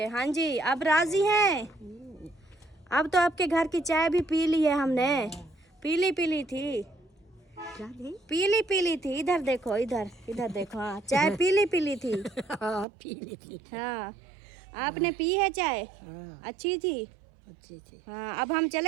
हाँ जी, अब राजी हैं? अब तो आपके घर की चाय भी पी ली है हमने। पीली पीली थी, पीली पीली थी। इधर देखो, इधर इधर देखो। हाँ, चाय पीली पीली थी। पीली थी। हाँ, आपने पी है चाय? अच्छी थी, अच्छी थी। हाँ। अब हम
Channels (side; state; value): left; drops out; at 12.9 s